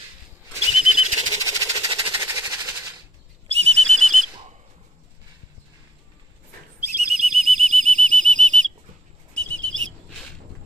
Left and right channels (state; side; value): normal; both; correlation 0.68